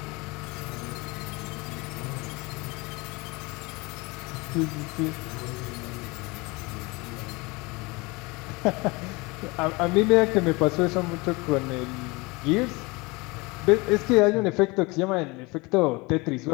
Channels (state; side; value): quieter; right; 25.3 dB